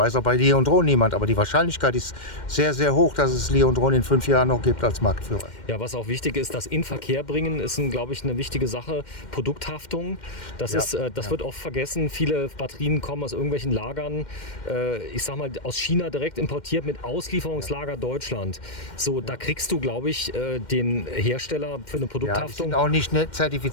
auch bei Leontron niemand. Aber die Wahrscheinlichkeit ist sehr, sehr hoch, dass es Leontron in 5 Jahren noch gibt als Marktführer. Ja, was auch wichtig ist, das in Verkehr bringen, ist, glaube ich, eine wichtige Sache. Produkthaftung, das wird oft vergessen. Viele Batterien kommen aus irgendwelchen Lagern, ich sag mal, aus China direkt importiert mit Auslieferungslager Deutschland. So, da kriegst du, glaube ich, den Hersteller für eine Ja, die Produkthaftung. sind auch nicht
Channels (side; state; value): right; late; 2.1 ms